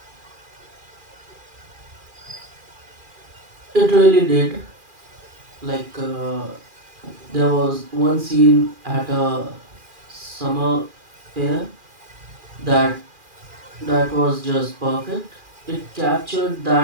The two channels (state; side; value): late; left; 2.4 ms